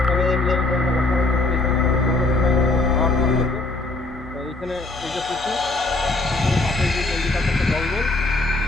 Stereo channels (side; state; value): right; quieter; 3.1 dB